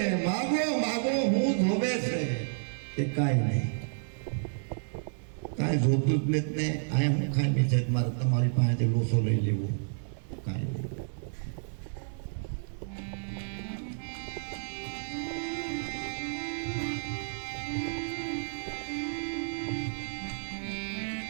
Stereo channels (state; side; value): silent; left; digital silence